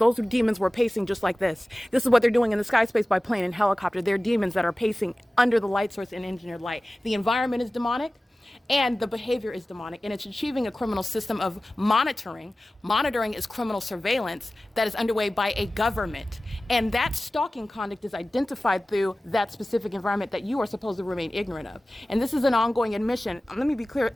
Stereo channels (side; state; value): both; normal; correlation 0.97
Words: demons were pacing just like this. This is what they're doing in the sky space by plane and helicopter. They're demons that are pacing under the light source in engineered light. The environment is demonic. And the behavior is demonic, and it's achieving a criminal system of monitoring. Monitoring is criminal surveillance that is underway by a government. And that stalking conduct is identified through that specific environment that you are supposed to remain ignorant of. And this is an ongoing admission. Let me be clear,